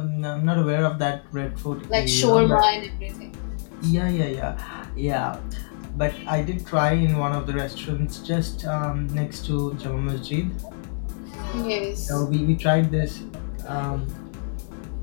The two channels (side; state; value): right; silent; digital silence